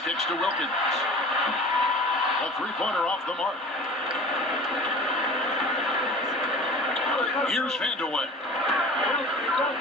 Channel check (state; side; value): normal; both; correlation 0.41